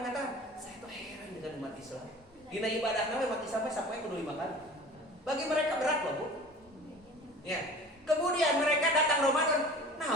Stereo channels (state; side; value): normal; both; correlation 0.41